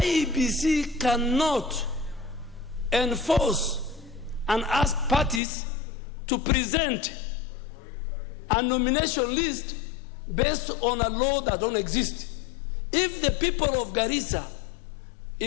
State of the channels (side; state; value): right; drops out; at 5.4 s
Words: cannot enforce and ask parties to present a nomination list based on a law that don't exist. If the people of Garissa,